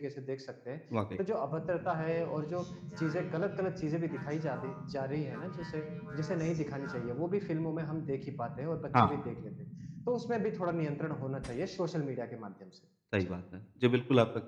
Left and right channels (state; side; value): identical; both; correlation 1.00